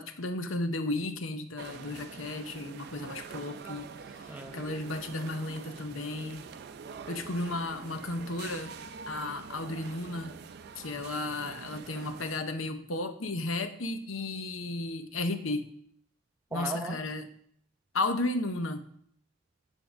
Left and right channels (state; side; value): normal; both; correlation 0.37